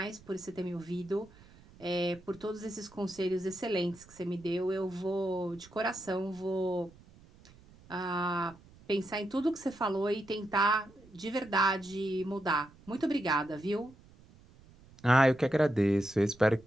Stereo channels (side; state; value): right; noise; rumble, 24 dB below the sound